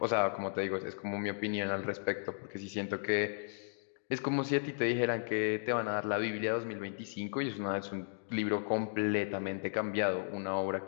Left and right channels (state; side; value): silent; right; digital silence